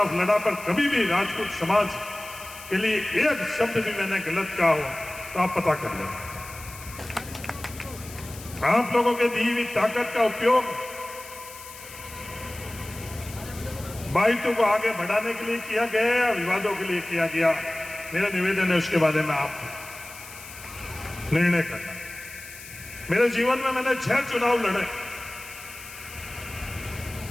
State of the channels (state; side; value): noise; left; hiss, 15 dB below the sound